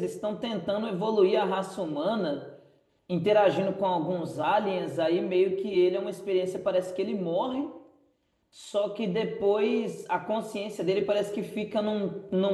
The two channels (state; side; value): identical; both; correlation 1.00